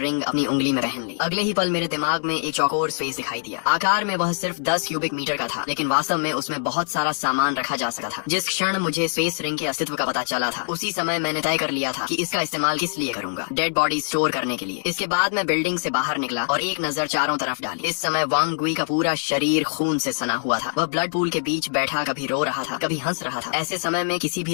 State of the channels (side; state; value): right; silent; digital silence